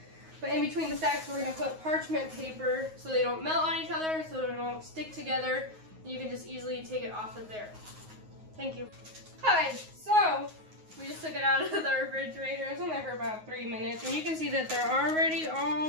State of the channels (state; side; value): late; left; 9.4 ms